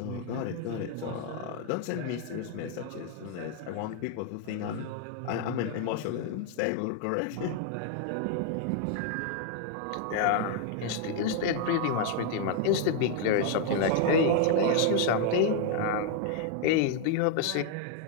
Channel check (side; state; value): both; different; correlation 0.00